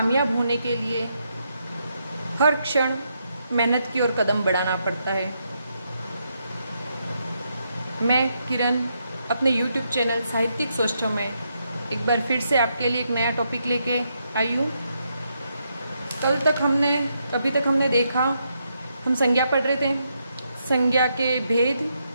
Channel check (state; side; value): inverted; both; correlation -0.80